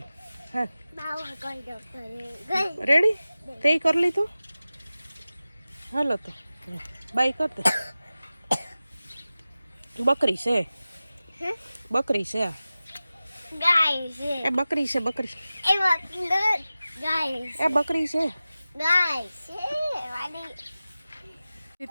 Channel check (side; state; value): both; inverted; correlation -0.96